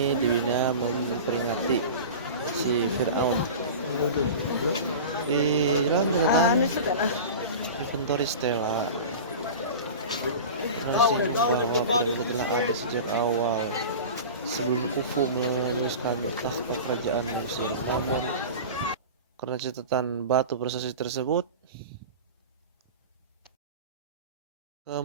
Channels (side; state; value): both; inverted; correlation -0.32